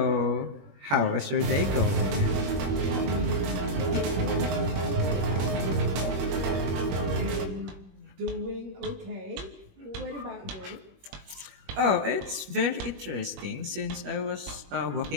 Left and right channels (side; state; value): left; late; 21 ms